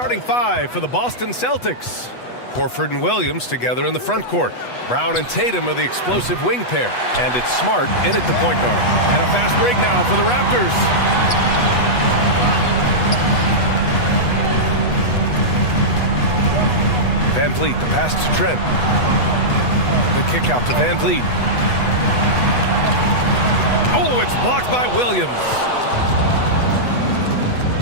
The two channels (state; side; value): late; right; 8.2 ms